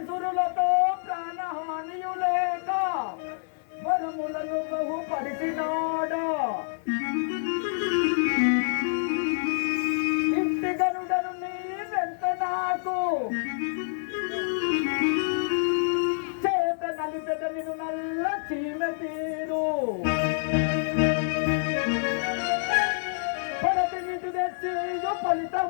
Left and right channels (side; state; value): right; silent; 56 dB below the other